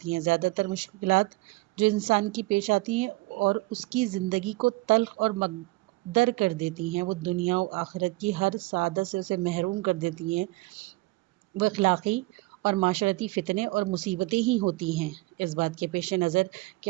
ہیں۔ زیادہ تر مشکلات جو انسان کی پیش آتی ہیں اور اس کی زندگی کو تلخ اور مکدر کر دیتی ہیں، وہ دنیا و آخرت کی ہر سعادت سے اسے محروم کر دیتی ہیں، وہ اخلاقی اور معاشرتی فتنے اور مصیبتیں ہی ہوتی ہیں۔ اس بات کے پیش نظر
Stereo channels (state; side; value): quieter; left; 21.4 dB